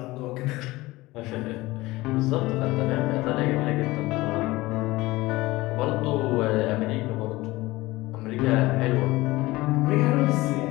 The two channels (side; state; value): right; quieter; 19.7 dB